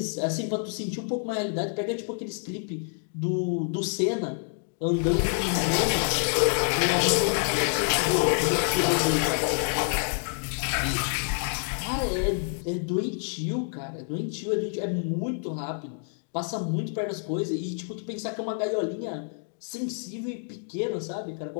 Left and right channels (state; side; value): silent; right; 60 dB below the other